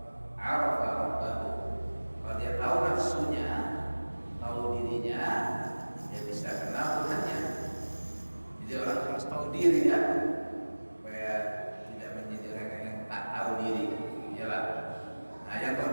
arafa rabbahu. Kalau dia tahu nafsunya, tahu dirinya, dia bisa kenal Tuhannya. Jadi orang harus tahu diri ya, supaya tidak menjadi orang yang tak tahu diri. Yalah. Nah, yang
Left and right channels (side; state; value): both; inverted; correlation -1.00